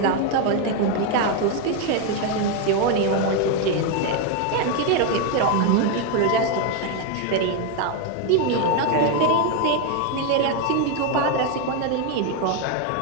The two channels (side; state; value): both; different; correlation 0.02